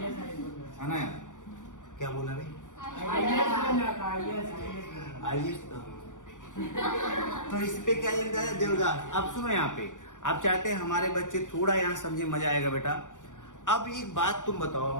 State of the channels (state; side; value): late; right; 0.87 ms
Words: ना यार? क्या बोला भाई? आईएएस। तो इस पे क्या लिखता है? देवदास। अब सुनो यहाँ पे, आप चाहते हैं हमारे बच्चे थोड़ा यहाँ समझे, मजा आएगा बेटा। अब एक बात तुम बताओ,